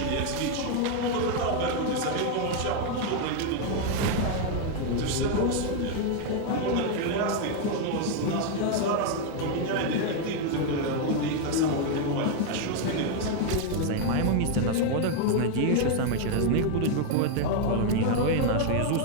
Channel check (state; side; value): different; both; correlation 0.01